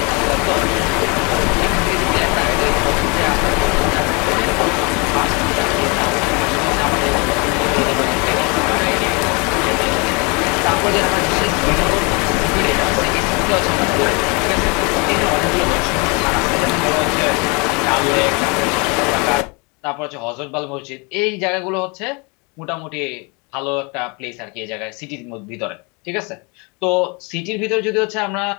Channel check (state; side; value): quieter; right; 30.5 dB